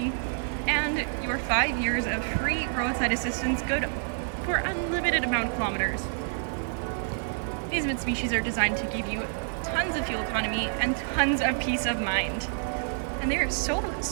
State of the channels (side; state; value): left; silent; 59 dB below the other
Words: and your 5 years of free roadside assistance, good for unlimited amount of kilometers. These Mitsubishis are designed to give you tons of fuel economy and tons of peace of mind. And they're so